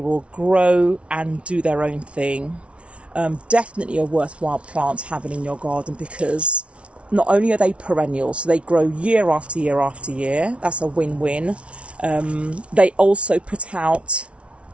grow and do their own thing. Definitely a worthwhile plant having in your garden because not only are they perennial, so they grow year after year after year. That's a win-win. They also put out,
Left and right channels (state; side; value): late; left; 0.061 ms